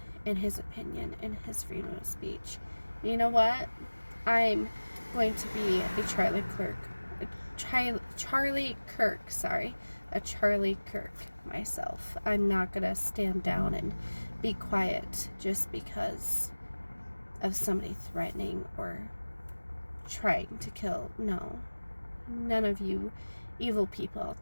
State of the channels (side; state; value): both; inverted; correlation -1.00